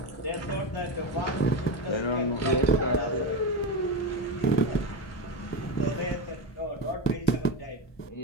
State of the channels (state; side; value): late; right; 1.2 ms